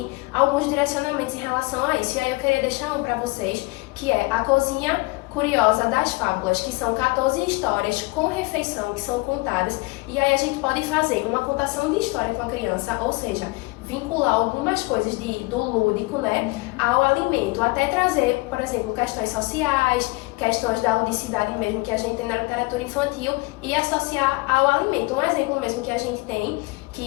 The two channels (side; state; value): right; quieter; 24.3 dB